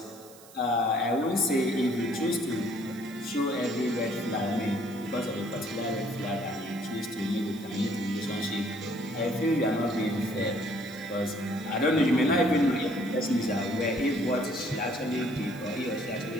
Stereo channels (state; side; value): noise; right; hiss, 21 dB below the sound